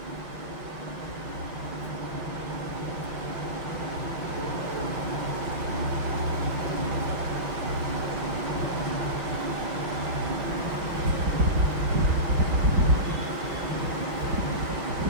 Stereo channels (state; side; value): late; left; 5.7 ms